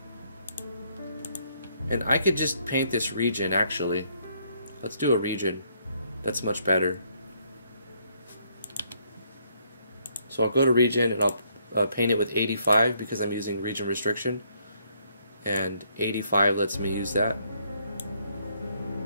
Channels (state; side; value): inverted; both; correlation -0.70